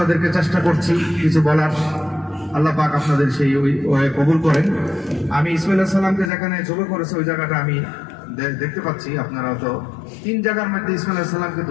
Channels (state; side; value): drops out; right; at 6.3 s